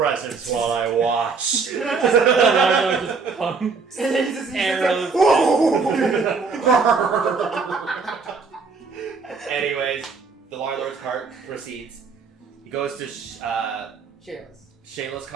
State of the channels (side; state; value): left; quieter; 4.8 dB